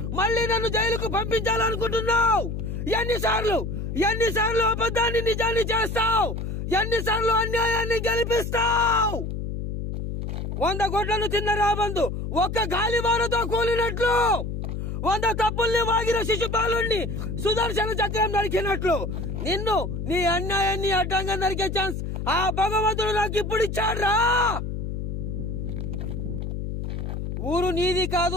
మళ్ళీ నన్ను జైలుకు పంపించాలనుకుంటున్నావు? ఎన్నిసార్లు అబద్ధాన్ని నిజాన్ని చేస్తావు? ఎన్నిసార్లు అన్యాయాన్ని గెలిపిస్తావు? 100 గొడ్లను తిన్న రాబందు ఒక్క గాలివానతో కూలినట్లు, 100 తప్పుల్ని వాగిన శిశుపాలుణ్ణి సుదర్శన చక్రం నరికినట్లు నిన్ను నీ అన్యాయాన్ని అడ్డంగా నరికే ఛాన్స్ ఆ భగవంతుడు నాకు ఇప్పుడు ఇచ్చాడ్రా. ఊరు నీది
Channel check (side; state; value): left; noise; hum, 4 dB below the sound